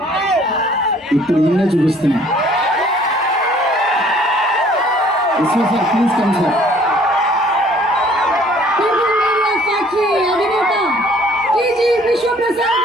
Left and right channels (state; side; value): normal; both; correlation 0.57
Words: ఇప్పుడు ఈయనే చూపిస్తున్నా. Sir please come sir.